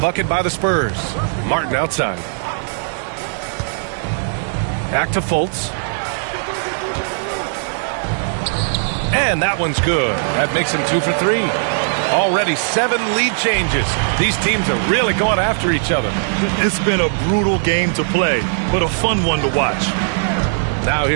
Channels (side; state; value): left; silent; digital silence